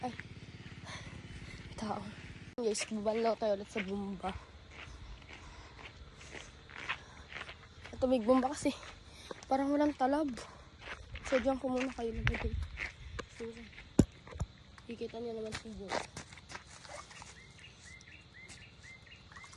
tao. Guys, bubanlaw tayo ulit sa bumba. Tumig bumba kasi. Parang walang talab. So, diyan ko muna kayo nagagay. So, kikita niyo naman si Bo.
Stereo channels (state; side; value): identical; both; correlation 1.00